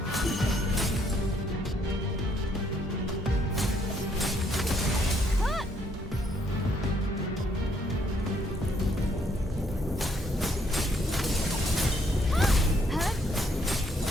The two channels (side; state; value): both; normal; correlation 0.69